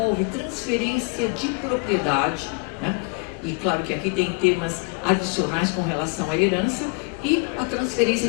transferência de propriedade, né? E claro que aqui tem temas adicionais com relação à herança, e a transferência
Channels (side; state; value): right; quieter; 32.1 dB